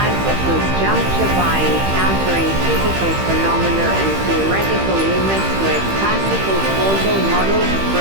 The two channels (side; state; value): left; late; 15 ms